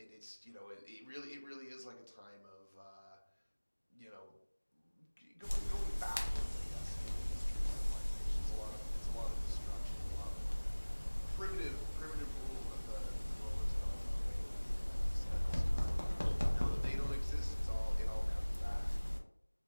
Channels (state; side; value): inverted; both; correlation -1.00